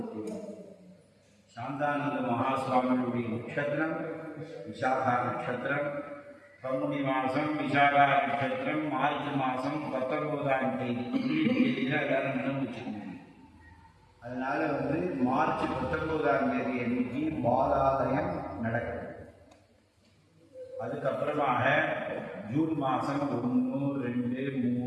சாந்தானந்த மகாசுவாமியுடைய நட்சத்திரம் விசாகா நட்சத்திரம், பங்குனி மாதம் விசாகா நட்சத்திரம், மார்ச் மாதம் 19ஆம் தேதி எல்லாரும் நினைவு வச்சுக்கணும். அதனால மார்ச் 19ஆம் தேதி அன்னைக்கு பாலாலயம் நடக்குது. அதுக்கப்புறமாக ஜூன் மாதம் 1, 2,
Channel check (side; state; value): both; identical; correlation 1.00